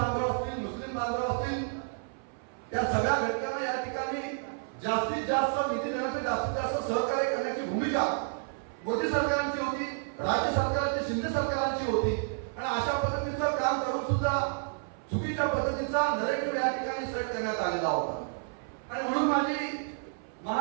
असतील, मुस्लिम बांधव असतील, या सगळ्या घटकांना या ठिकाणी जास्तीत जास्त निधी देण्यासाठी जास्तीत जास्त सहकार्य करण्याची भूमिका मोदी सरकारची होती, राज्य सरकारची, शिंदे सरकारची होती. आणि अशा पद्धतीचं काम करून सुद्धा चुकीच्या पद्धतीचा नरेटिव्ह या ठिकाणी सेट करण्यात आलेला होता. आणि म्हणून माझी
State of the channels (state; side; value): silent; left; 58 dB below the other